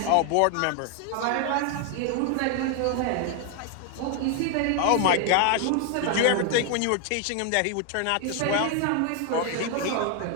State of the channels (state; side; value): different; both; correlation 0.00